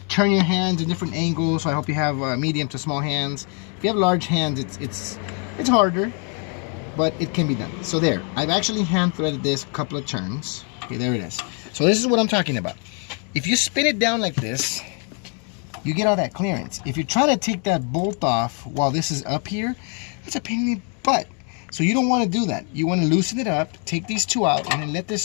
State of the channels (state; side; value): quieter; right; 38.7 dB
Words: turn your hands in different angles. So I hope you have medium to small hands. If you have large hands, it's harder, but it can be done. So there, I've actually hand threaded this a couple of turns. Okay, there it is. So this is what I'm talking about. If you spin it down like this, you get all that clearance. If you're trying to take that bolt off while this is up here, that's a pain in the butt. So you don't want to do that. You want to loosen it up, take these 2 out, and then let this